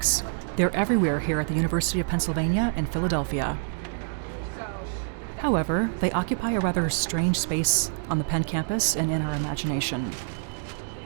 They're everywhere here at the University of Pennsylvania in Philadelphia. However, they occupy a rather strange space on the Penn campus and in our imagination.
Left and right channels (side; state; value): left; silent; digital silence